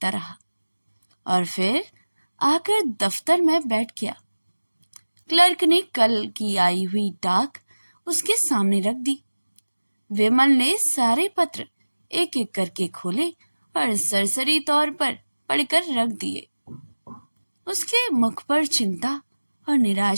रहा और फिर आकर दफ्तर में बैठ गया। क्लर्क ने कल की आई हुई डाक उसके सामने रख दी। विमल ने सारे पत्र एक एक करके खोले और सरसरी तौर पर पढ़कर रख दिए। उसके मुख पर चिंता और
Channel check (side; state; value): both; inverted; correlation -1.00